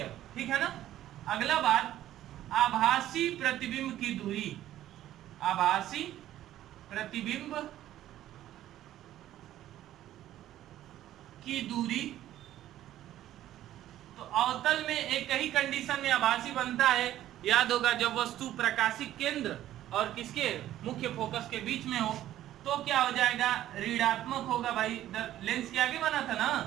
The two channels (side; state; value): left; quieter; 13.0 dB